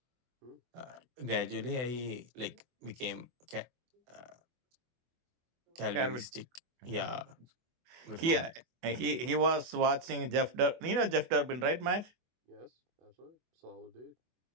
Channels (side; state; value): left; late; 24 ms